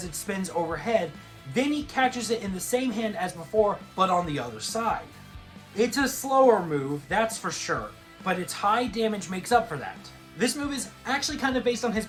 it spins overhead, then he catches it in the same hand as before, but on the other side. It's a slower move, that's for sure, but its high damage makes up for that. This move is actually kind of based on his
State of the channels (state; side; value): identical; both; correlation 1.00